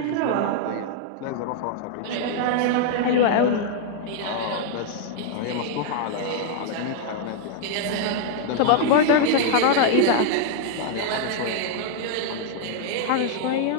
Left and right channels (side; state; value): both; different; correlation -0.01